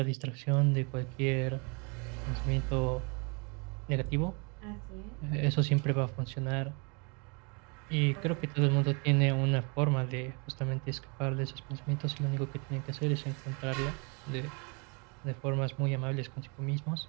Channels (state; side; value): quieter; left; 32.8 dB